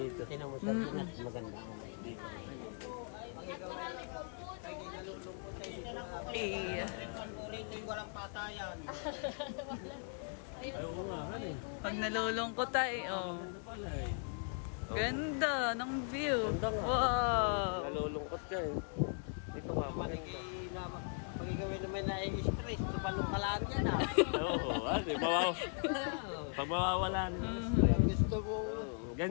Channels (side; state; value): right; silent; 52 dB below the other